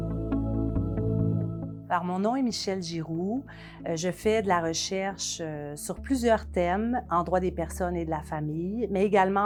Alors, mon nom est Michèle Giroux. Je fais de la recherche sur plusieurs thèmes en droit des personnes et de la famille, mais également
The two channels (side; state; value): both; identical; correlation 1.00